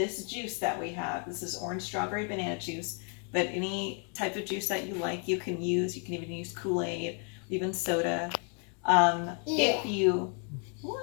juice that we have. This is orange strawberry banana juice, but any type of juice that you like you can use. You can even use Kool-Aid, even soda. If you,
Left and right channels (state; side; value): quieter; right; 39.9 dB